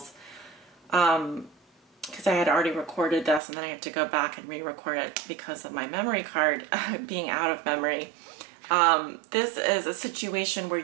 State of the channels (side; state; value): left; drops out; at 3.4 s